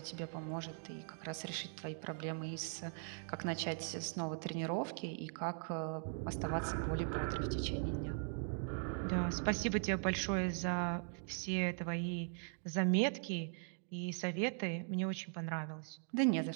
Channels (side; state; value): left; silent; 51 dB below the other